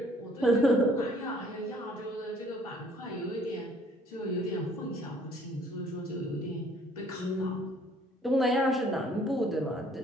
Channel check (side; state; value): both; normal; correlation 0.59